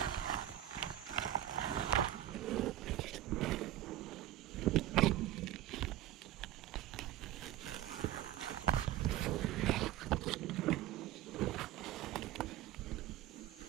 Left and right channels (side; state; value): left; quieter; 13.4 dB